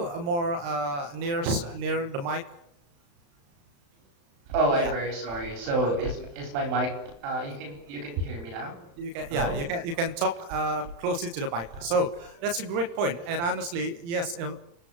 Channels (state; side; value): late; left; 35 ms